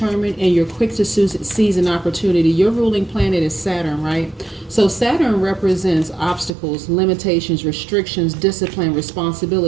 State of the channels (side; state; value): left; drops out; at 6.5 s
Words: and you're quick to seize an opportunity. Your ruling planet is Saturn, right? So Saturn represents obstacles, limitations, restrictions, discipline,